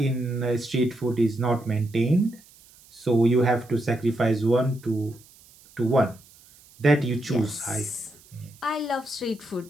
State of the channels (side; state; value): right; noise; hiss, 26 dB below the sound